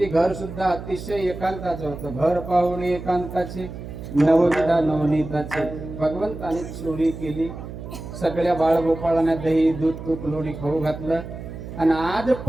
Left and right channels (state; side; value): noise; right; hum, 10 dB below the sound